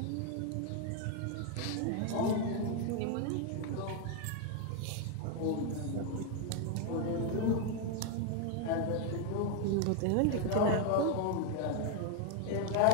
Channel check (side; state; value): both; different; correlation 0.00